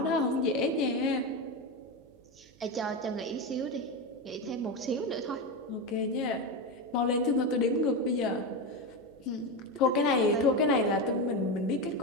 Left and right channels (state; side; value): noise; right; hum, 28 dB below the sound